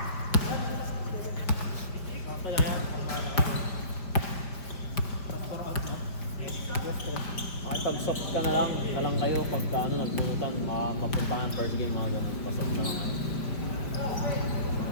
Pag-soft ka na lang kayo pagka nagpuntan, mapupuntahan first game mga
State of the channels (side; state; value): right; late; 4.9 ms